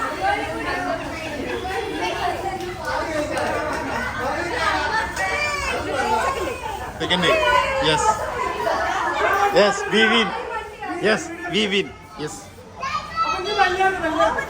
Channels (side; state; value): both; identical; correlation 1.00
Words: Second day. Yes. Yes, we win. Yes, we win. Yes.